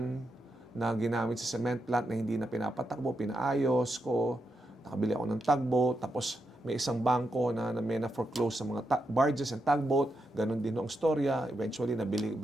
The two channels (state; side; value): normal; both; correlation 0.84